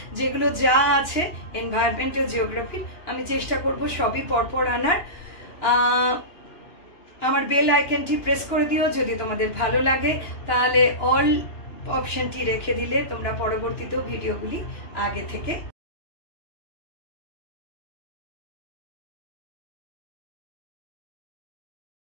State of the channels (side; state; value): right; late; 2.9 ms